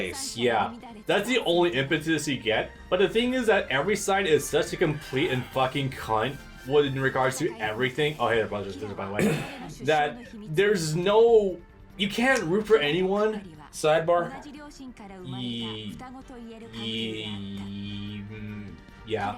yeah, that's the only impetus you get. But the thing is that every side is such a complete and fucking cunt in regards to everything. Oh, hey, there, brothers, by the way. That there's no, you can't root for anyone. Sidebar?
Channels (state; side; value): identical; both; correlation 1.00